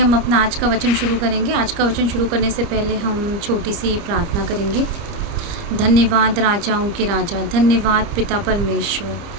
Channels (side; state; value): left; late; 30 ms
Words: अपना आज का वचन शुरू करेंगे। आज का वचन शुरू करने से पहले हम छोटी सी प्रार्थना करेंगे। धन्यवाद राजाओं के राजा, धन्यवाद पिता